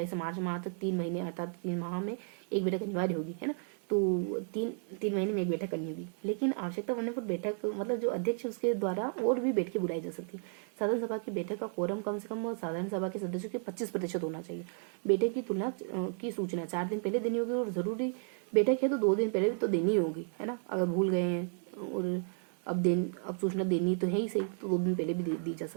से मार्च माह तक 3 महीने अर्थात 3 माह में एक बैठक अनिवार्य होगी, है ना। तो तीन महीने में एक बैठक करनी होगी, लेकिन आवश्यकता पड़ने पर बैठक मतलब जो अध्यक्ष उसके द्वारा और भी बैठकें बुलाई जा सकती है। साधारण सभा की बैठक का कोरम कम से कम साधारण सभा के सदस्यों के 25% होना चाहिए। बैठक की तुलना की सूचना 4 दिन पहले देनी होगी, और जरूरी बैठक है तो 2 दिन पहले भी तो देनी होगी, है ना। अगर भूल गए हैं और अब सूचना देनी तो है ही सही, तो 2 दिन पहले भी दी जा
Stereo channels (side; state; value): left; silent; 56 dB below the other